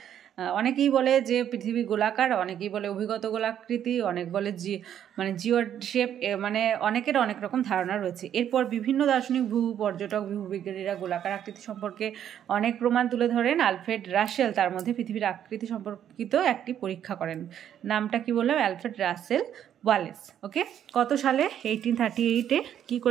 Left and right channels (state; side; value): quieter; left; 10.0 dB